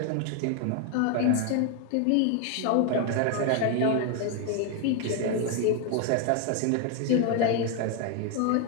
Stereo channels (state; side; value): different; both; correlation 0.01